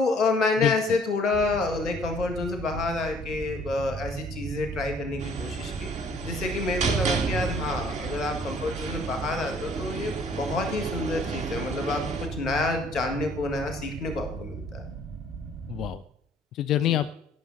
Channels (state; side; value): normal; both; correlation 0.57